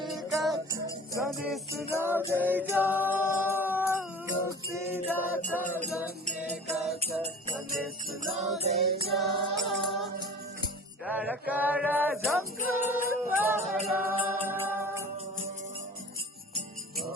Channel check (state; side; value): normal; both; correlation 0.42